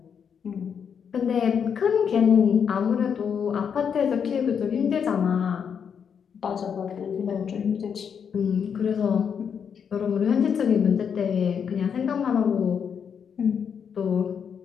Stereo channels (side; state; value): right; quieter; 7.2 dB